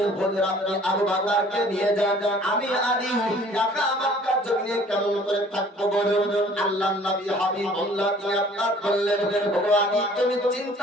আপনি আবু বকরকে নিয়ে যান, আমি আলী একা মক্কার জমিনে কেমন করে থাকবো বলুন। আল্লাহর নবী হাবিবুল্লাহ তিনি আপনার বললেন, ও আলী তুমি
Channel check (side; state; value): both; normal; correlation 0.53